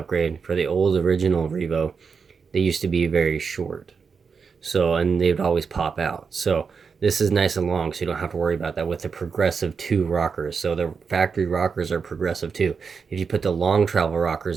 for the old original Revo. They used to be very short. So, and they would always pop out. So this is nice and long, so you don't have to worry about that with the Progressive 2 rockers. So the factory rockers are Progressive 2. If you put the long travel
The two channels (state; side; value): quieter; left; 5.6 dB